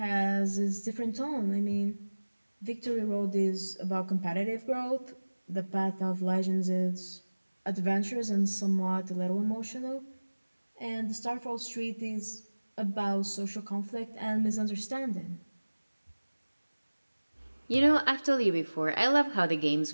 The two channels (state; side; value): inverted; both; correlation -1.00